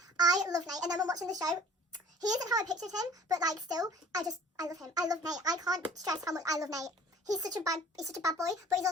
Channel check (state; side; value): normal; both; correlation 0.48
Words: I love Nate. And then when watching the show, he isn't how I pictured him, but, like, still, I love him. I love Nate. I can't stress how much I love Nate. He's such a bad boy, but he's